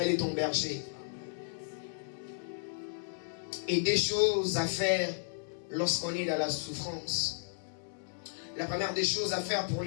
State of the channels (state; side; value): silent; right; digital silence